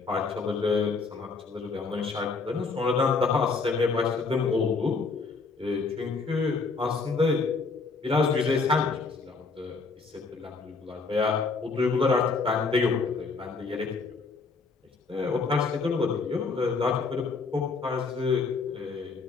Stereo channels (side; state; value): right; quieter; 4.3 dB